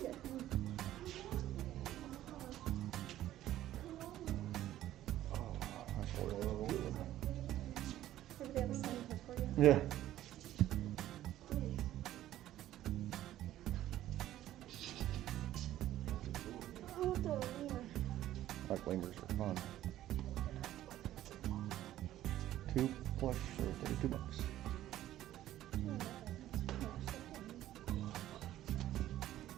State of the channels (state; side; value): quieter; left; 13.5 dB